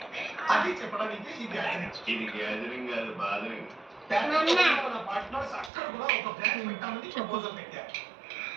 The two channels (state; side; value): drops out; left; at 5.7 s